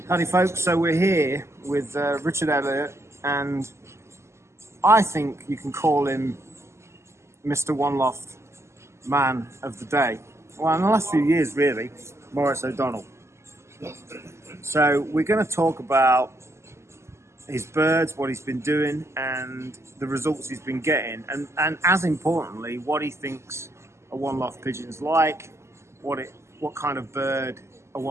Howdy folks, so we're here with Richard Elliott, and I think you can call him Mr. One Loft Man of the Day. Well, in the last few years really, Maurice O. So we're going to talk about his birds, what he's been doing and the results he's been getting, and as importantly, what he thinks a one loft pigeon's like, what kind of bird a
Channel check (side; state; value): left; late; 0.13 ms